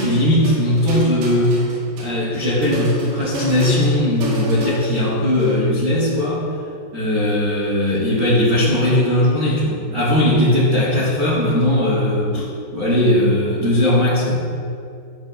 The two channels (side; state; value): left; late; 14 ms